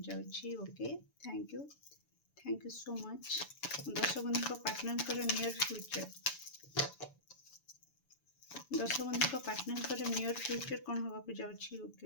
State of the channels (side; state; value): right; late; 6.9 ms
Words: जाउछि। Okay, thank you so much. दर्शक बंधु पार्टनर नियर फ्यूचर, दर्शक बंधु पार्टनर नियर फ्यूचर कौन हवा को जाउछि।